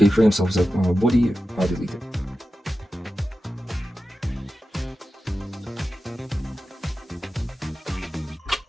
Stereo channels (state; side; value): normal; both; correlation 0.93